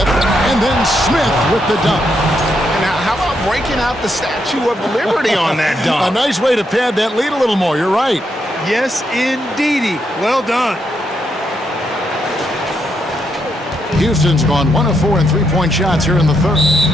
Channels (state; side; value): normal; both; correlation 0.79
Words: and then Smith with the dunk. Now, how about breaking out the Statue of Liberty on that dunk? A nice way to pad that lead a little more. You're right. Yes, indeedy. Well done. Houston's gone 1 of 4 in 3-point shots here in the third.